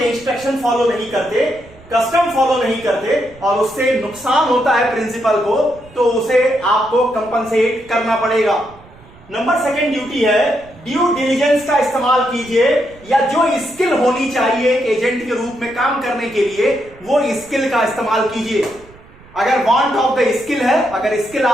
इंस्ट्रक्शन फॉलो नहीं करते, कस्टम फॉलो नहीं करते और उससे नुकसान होता है प्रिंसिपल को, तो उसे आपको कंपनसेट करना पड़ेगा। नंबर 2 ड्यूटी है ड्यू डिलिजेंस का इस्तेमाल कीजिए, या जो स्किल होनी चाहिए एजेंट के रूप में काम करने के लिए वो स्किल का इस्तेमाल कीजिए। अगर वांट ऑफ द स्किल है, अगर स्किल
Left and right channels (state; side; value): noise; right; rumble, 24 dB below the sound